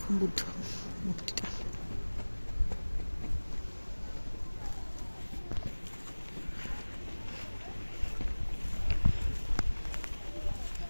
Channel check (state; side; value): inverted; both; correlation -1.00